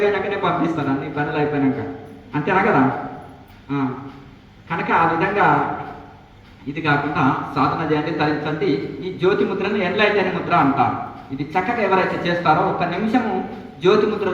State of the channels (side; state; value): both; identical; correlation 1.00